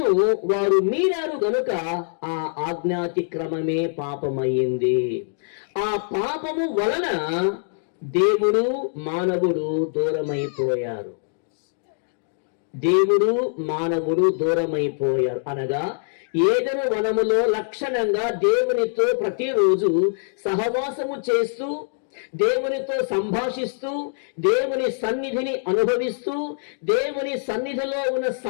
వారు మీరారు గనుక ఆ ఆజ్ఞాతిక్రమమే పాపమయ్యింది. ఆ పాపము వలన దేవుడు మానవుడు దూరమైపోయారు. అనగా ఏదెను వనములో లక్షణంగా దేవునితో ప్రతిరోజు సహవాసము చేస్తూ, దేవునితో సంభాషిస్తూ, దేవుని సన్నిధిని అనుభవిస్తూ, దేవుని సన్నిధిలో ఉన్న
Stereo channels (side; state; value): right; silent; digital silence